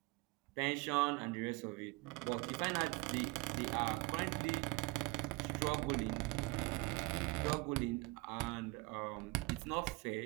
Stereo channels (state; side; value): quieter; left; 23.6 dB